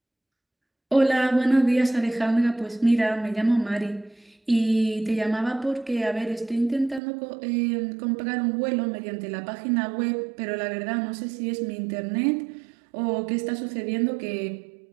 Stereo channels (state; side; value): drops out; left; at 7.0 s